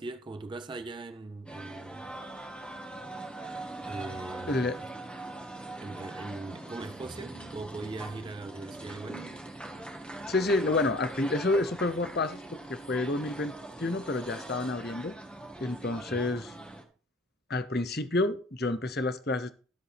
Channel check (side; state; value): both; normal; correlation 0.52